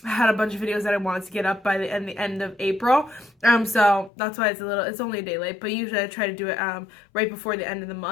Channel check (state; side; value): drops out; right; at 4.1 s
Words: had a bunch of videos that I wanted to get up by the end of April. So that's why it's only a day late, but usually I try to do it right before the end of the